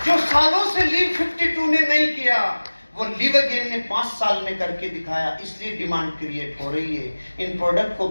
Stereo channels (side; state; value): both; inverted; correlation -1.00